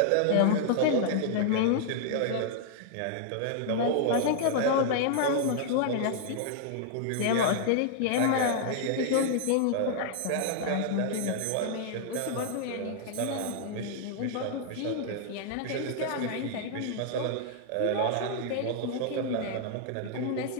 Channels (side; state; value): both; different; correlation -0.01